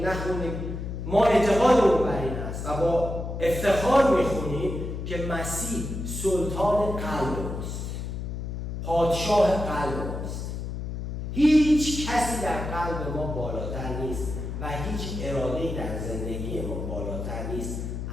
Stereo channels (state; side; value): noise; left; hum, 5 dB below the sound